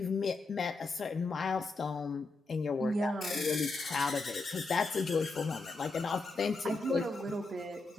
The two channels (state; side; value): quieter; right; 3.5 dB